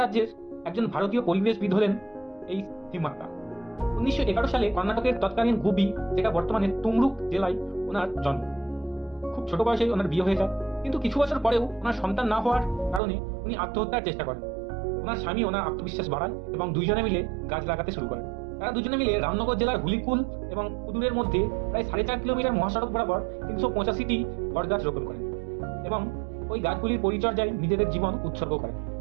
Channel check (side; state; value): left; drops out; at 13.0 s